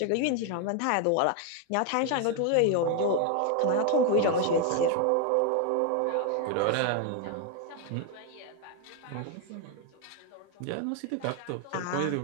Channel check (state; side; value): different; both; correlation 0.01